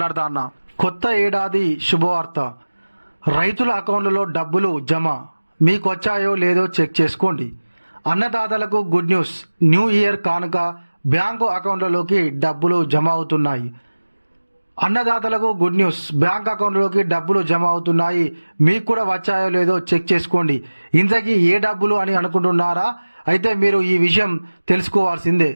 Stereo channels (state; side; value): inverted; both; correlation -1.00